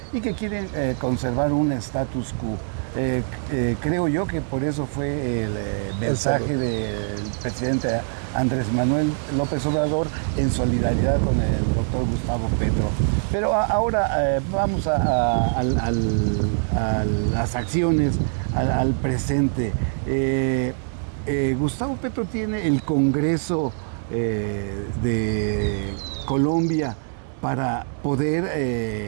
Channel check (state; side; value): silent; left; digital silence